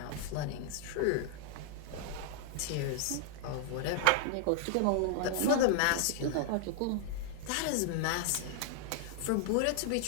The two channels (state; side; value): different; both; correlation 0.00